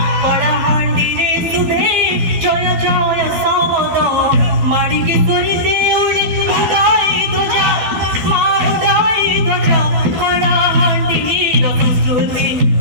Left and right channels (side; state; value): left; late; 12 ms